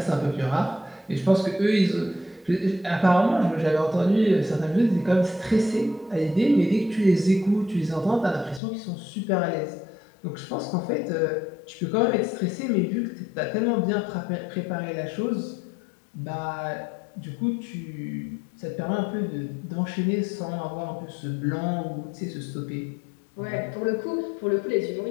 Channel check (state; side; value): drops out; right; at 8.6 s